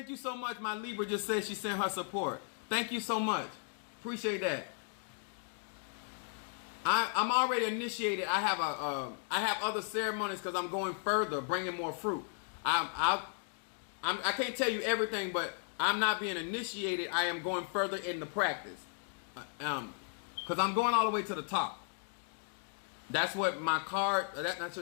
you so much. My Libra just said she sent her support. Thank you so much. Appreciate that. I'm already initiated. I have other ceremonies because I'm going further, bringing more fruit. I can't tell you everything, but I'm not being initiated. I am going further in the practice. Because I'm going all the way to the top. That's what my card. I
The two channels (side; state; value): right; silent; 54 dB below the other